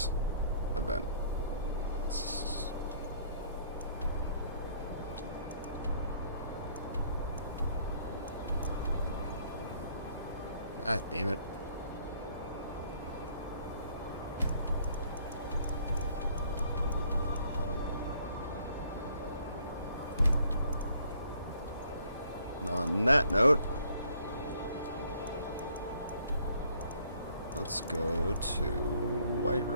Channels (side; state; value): both; inverted; correlation -0.62